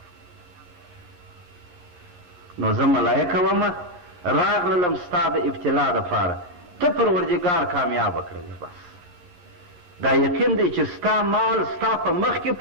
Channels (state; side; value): late; left; 11 ms